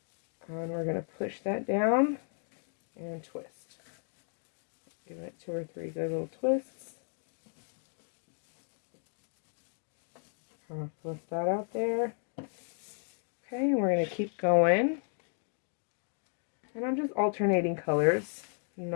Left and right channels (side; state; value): right; silent; 55 dB below the other